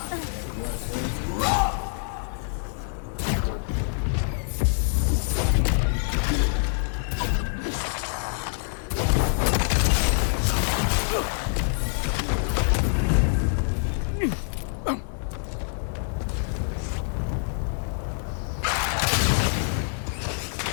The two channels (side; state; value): right; silent; digital silence